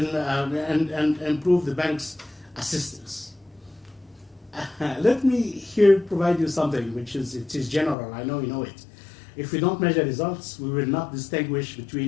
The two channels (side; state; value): right; drops out; at 8.0 s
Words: improve the bank's assistance. Let me here provide you something which is general. I know you know it. If we don't measure results, we will not distinguish